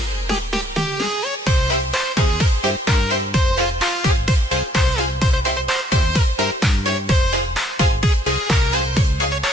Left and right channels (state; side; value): normal; both; correlation 0.66